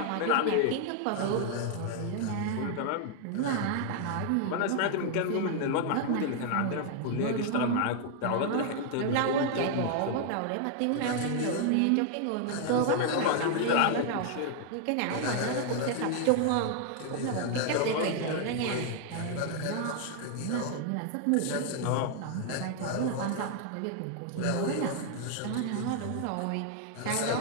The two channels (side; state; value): both; different; correlation 0.00